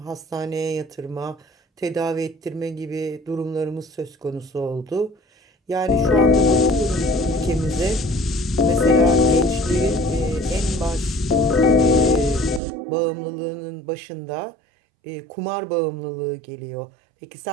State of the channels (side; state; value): left; drops out; at 12.6 s